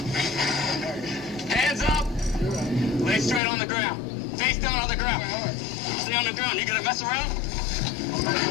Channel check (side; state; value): right; drops out; at 3.4 s